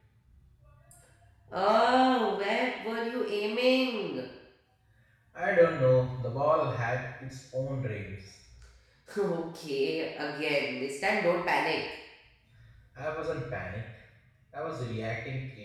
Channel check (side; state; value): both; identical; correlation 1.00